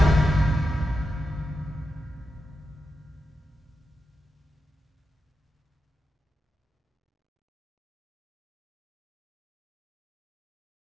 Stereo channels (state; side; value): normal; both; correlation 0.88